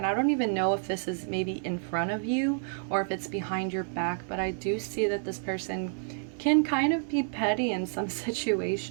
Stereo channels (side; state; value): left; silent; 58 dB below the other